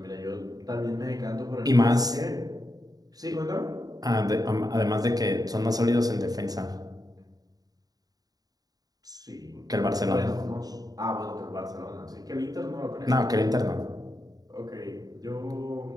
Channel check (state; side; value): late; left; 0.18 ms